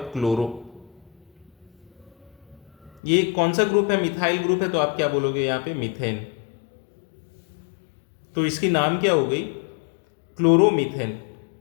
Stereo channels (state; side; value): drops out; right; at 3.0 s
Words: क्लोरो। ये कौन सा ग्रुप है, मिथाइल ग्रुप है, तो आप क्या बोलोगे यहां पे, मीथेन। तो इसकी नाम क्या हो गई, क्लोरोमीथेन।